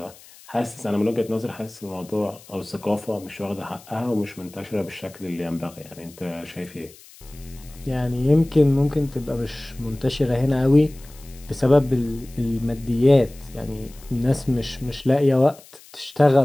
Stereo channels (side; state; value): left; noise; hiss, 22 dB below the sound